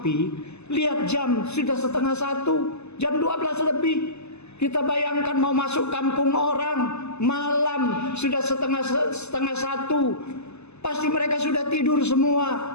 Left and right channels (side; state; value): right; late; 0.80 ms